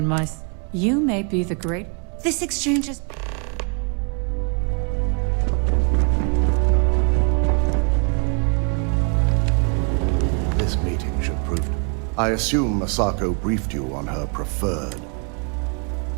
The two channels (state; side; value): quieter; left; 37.8 dB